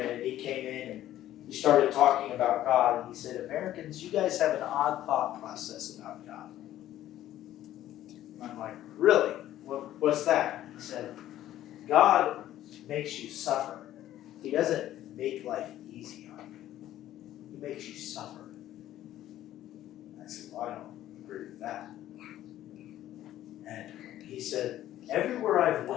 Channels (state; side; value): quieter; right; 13.1 dB